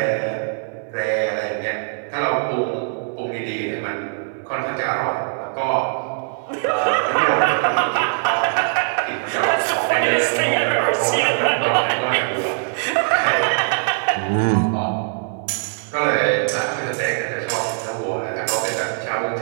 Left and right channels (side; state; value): left; silent; digital silence